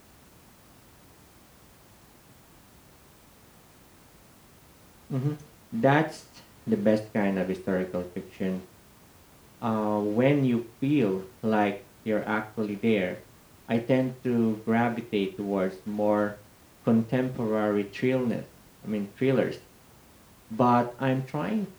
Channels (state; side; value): identical; both; correlation 1.00